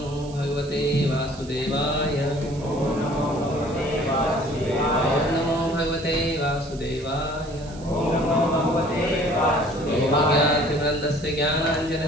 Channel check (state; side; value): noise; right; hiss, 21 dB below the sound